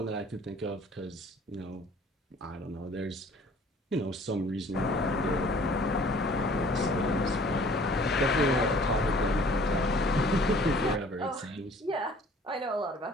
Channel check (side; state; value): both; normal; correlation 0.53